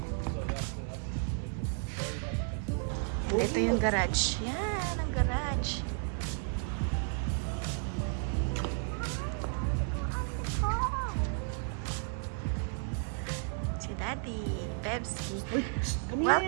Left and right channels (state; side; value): silent; left; 56 dB below the other